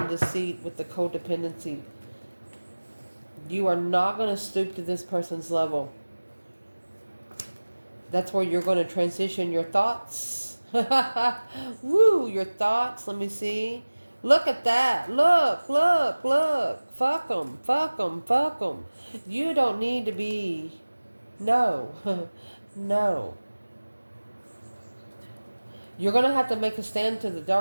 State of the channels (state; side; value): inverted; both; correlation -1.00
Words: deceit with the codependency. You are not going to stoop to this person's level. That's where you're going to transition your thoughts. Woo, your thoughts. Let me see. Look at that. Look, look, look. Fuck them, fuck them, fuck them. You don't need to be. No. No. You're going to have to make a stand to the